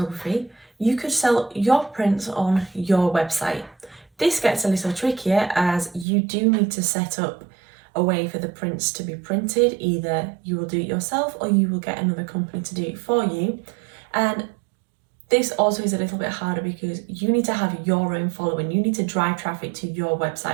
you could sell your prints on your website. This gets a little trickier as you do need to set up a way for the prints to be printed. Either you will do it yourself or you will get another company to do it for you. And this also is a little bit harder because you need to have your own following. You need to drive traffic to your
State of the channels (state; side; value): drops out; left; at 6.1 s